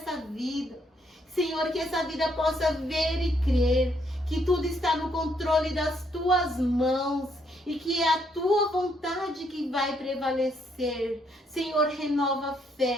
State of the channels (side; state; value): both; normal; correlation 0.72